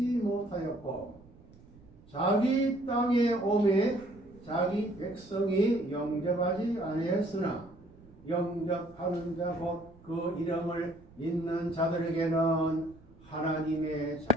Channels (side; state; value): right; noise; rumble, 24 dB below the sound